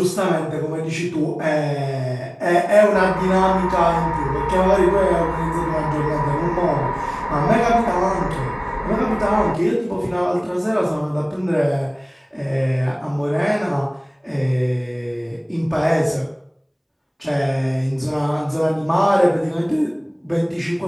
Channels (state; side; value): identical; both; correlation 1.00